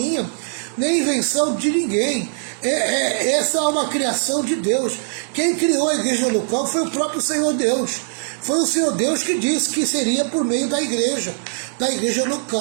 nem invenção de ninguém. Essa é uma criação de Deus. Quem criou a igreja local foi o próprio Senhor Deus. Foi o Senhor Deus que disse que seria por meio da igreja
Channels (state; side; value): silent; left; 65 dB below the other